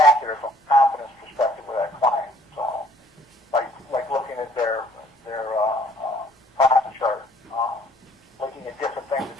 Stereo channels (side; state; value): both; normal; correlation 0.60